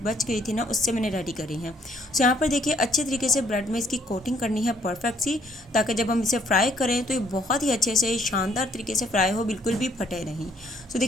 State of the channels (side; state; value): both; normal; correlation 0.65